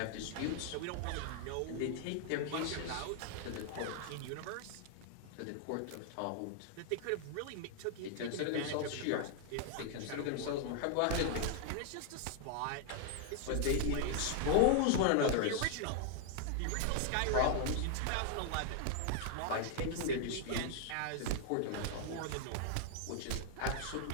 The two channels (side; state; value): both; different; correlation 0.00